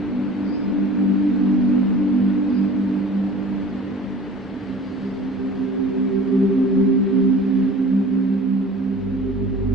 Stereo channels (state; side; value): normal; both; correlation 0.43